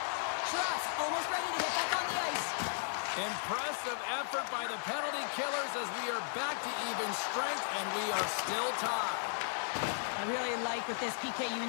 Trust, almost ready to get back on the ice. Impressive effort by the penalty killers as we are back to even strength, and we are still tied. I really like what this PK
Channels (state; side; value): silent; right; digital silence